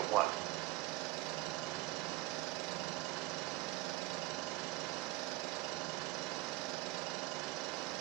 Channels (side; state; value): left; quieter; 18.7 dB